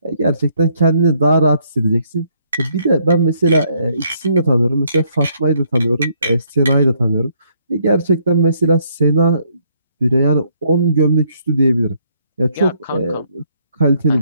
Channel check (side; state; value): both; inverted; correlation -0.69